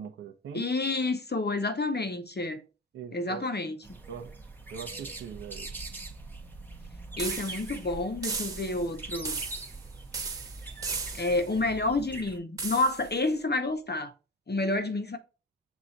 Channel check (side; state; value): both; normal; correlation 0.22